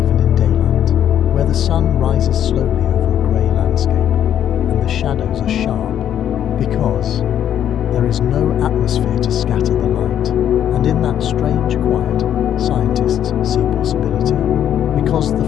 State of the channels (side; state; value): right; quieter; 10.1 dB